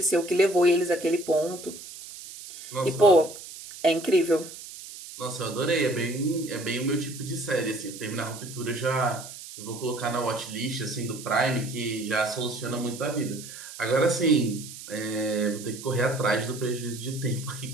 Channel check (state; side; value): noise; right; hiss, 13 dB below the sound